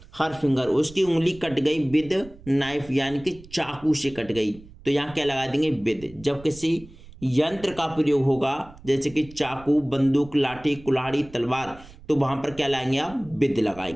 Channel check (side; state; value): right; noise; rumble, 20 dB below the sound